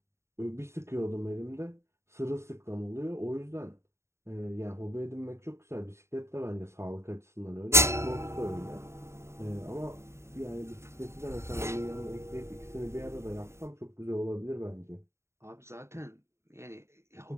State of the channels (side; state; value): left; late; 0.13 ms